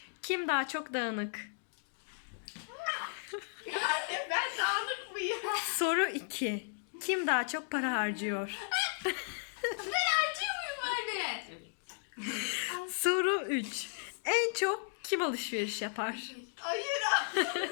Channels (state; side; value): silent; right; digital silence